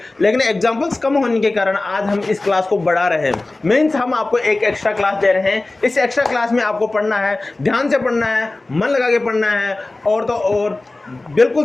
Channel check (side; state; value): right; quieter; 3.0 dB